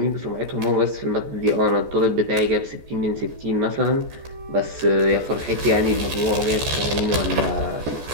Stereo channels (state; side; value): late; left; 14 ms